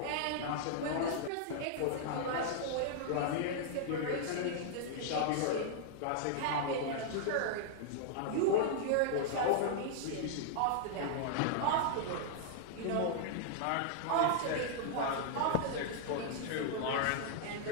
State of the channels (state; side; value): different; both; correlation -0.01